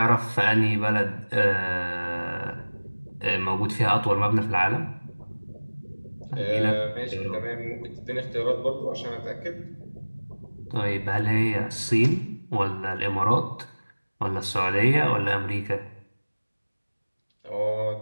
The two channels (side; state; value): both; inverted; correlation -1.00